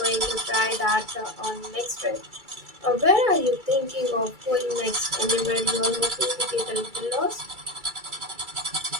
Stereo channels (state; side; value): late; left; 2.3 ms